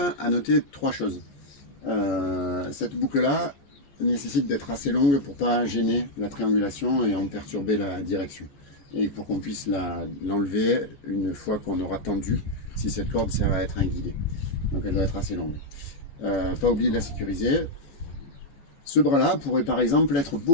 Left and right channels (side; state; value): right; late; 14 ms